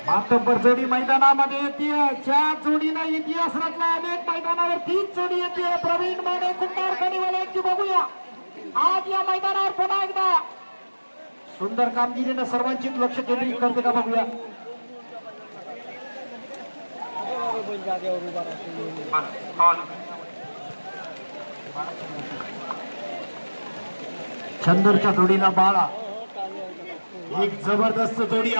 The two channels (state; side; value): inverted; both; correlation -1.00